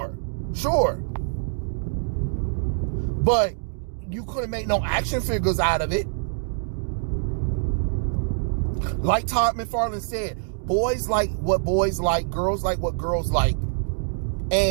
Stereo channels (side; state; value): left; silent; digital silence